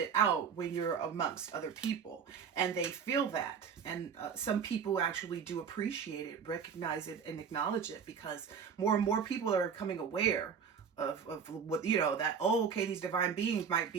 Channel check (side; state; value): left; quieter; 6.7 dB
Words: out when you're amongst other people, and they feel that. And some people actually do appreciate it, recognize it, and acknowledge it, because more and more people are becoming aware of what, that, oh, okay, these divine beings might